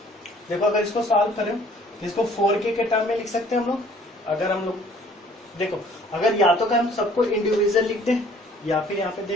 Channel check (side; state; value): both; normal; correlation 0.56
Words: देखो अगर इसको सॉल्व करें तो इसको 4k के टर्म में लिख सकते हैं हम लोग। अगर हम लोग देखो, अगर या तो हम सबको इंडिविजुअल लिखते हैं, या फिर यहाँ पे